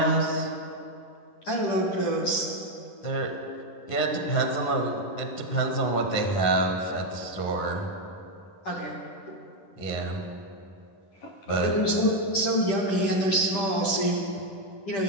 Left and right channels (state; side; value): late; right; 10 ms